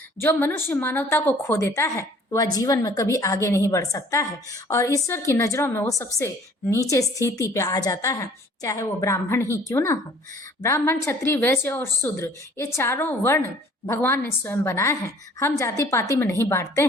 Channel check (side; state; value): both; normal; correlation 0.54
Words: जो मनुष्य मानवता को खो देता है वह जीवन में कभी आगे नहीं बढ़ सकता है और ईश्वर की नज़रों में वो सबसे नीचे स्थिति पे आ जाता है, चाहे वो ब्राह्मण ही क्यों ना हो। ब्राह्मण, क्षत्रिय, वैश्य और शूद्र, ये चारों वर्ण भगवान ने स्वयं बनाए हैं। हम जाति पाति में नहीं बांटते